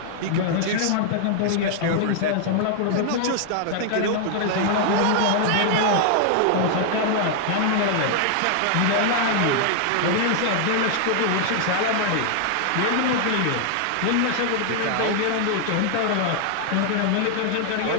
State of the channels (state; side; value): different; both; correlation 0.00